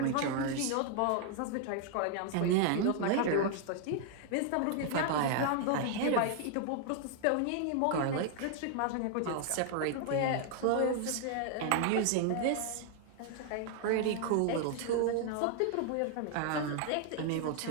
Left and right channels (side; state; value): both; different; correlation 0.00